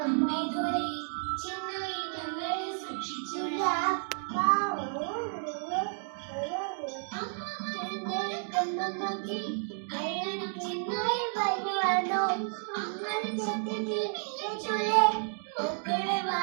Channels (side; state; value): left; silent; 55 dB below the other